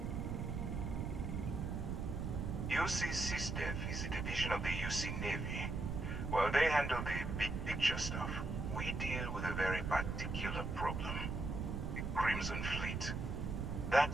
UC SysDef is a division of the UC Navy. While they handle the big picture stuff, we deal with a very particular problem. The Crimson Fleet.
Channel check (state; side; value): noise; right; rumble, 2 dB below the sound